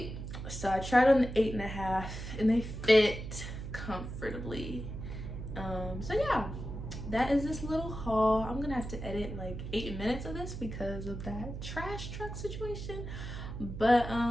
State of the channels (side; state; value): right; noise; hum, 8 dB below the sound